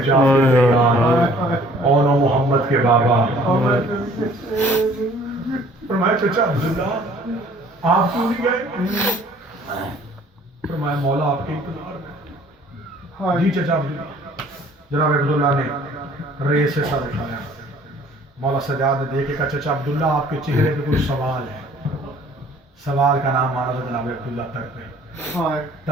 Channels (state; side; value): normal; both; correlation 0.55